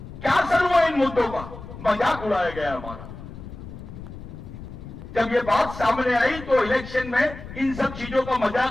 क्या असर हुआ इन मुद्दों का? मजाक उड़ाया गया हमारा। जब ये बात सामने आई तो इलेक्शन में इन सब चीजों का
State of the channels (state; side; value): noise; left; rumble, 13 dB below the sound